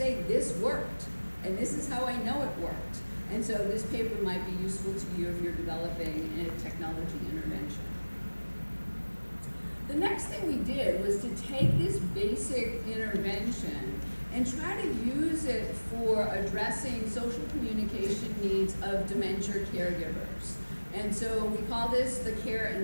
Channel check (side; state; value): both; inverted; correlation -1.00